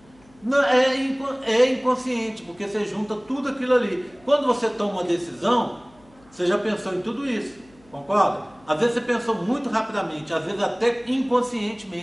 Não, é inconsciente, porque você junta tudo aquilo ali. Quando você toma uma decisão, você já pensou em tudo isso. Concorda? Às vezes você pensou muito rapidamente, às vezes até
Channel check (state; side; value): noise; left; hum, 29 dB below the sound